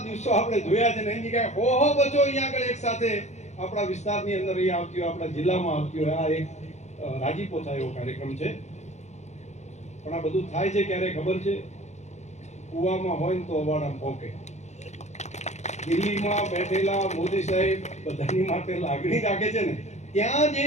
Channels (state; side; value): late; right; 0.33 ms